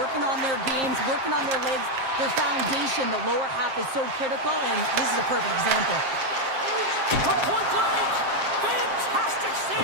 on their games, working on their legs. Their foundation, the lower half, is so critical, and this is a perfect example. From point blank! Fantastic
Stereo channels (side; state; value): left; late; 7.6 ms